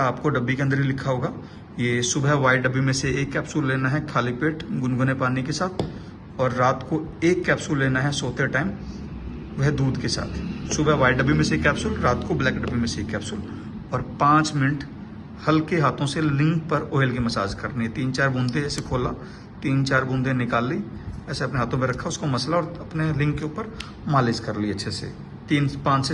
आपको डब्बी के अंदर ही लिखा होगा। ये सुबह व्हाइट डब्बी में से 1 कैप्सूल लेना है खाली पेट गुनगुने पानी के साथ, और रात को 1 कैप्सूल लेना है सोते टाइम, वह दूध के साथ। सुबह व्हाइट डब्बी में से 1 कैप्सूल, रात को ब्लैक डब्बी में से 1 कैप्सूल, और 5 मिनट हल्के हाथों से लिंग पर ऑयल की मसाज करनी है। 3-4 बूंदे ऐसे खोला, 3-4 बूंदे निकाल ली, ऐसे अपने हाथों में रखा, उसको मसला और अपने लिंग के ऊपर मालिश कर ली अच्छे से। 5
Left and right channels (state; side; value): identical; both; correlation 1.00